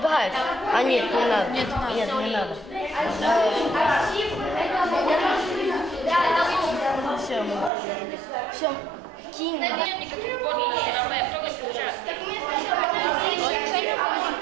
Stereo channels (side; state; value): left; drops out; at 7.7 s